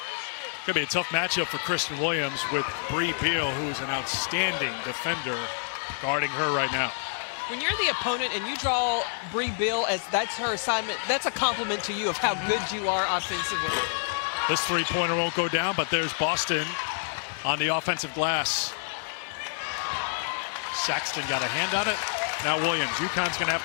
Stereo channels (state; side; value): silent; right; 59 dB below the other